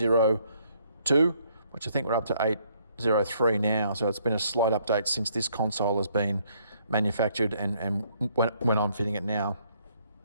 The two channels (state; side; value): inverted; both; correlation -0.68